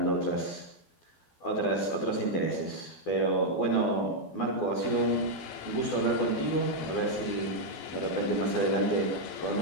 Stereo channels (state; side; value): late; right; 12 ms